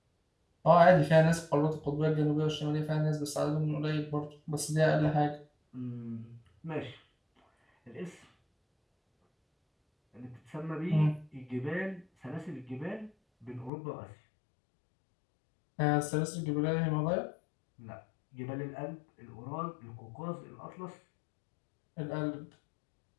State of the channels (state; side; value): drops out; right; at 13.7 s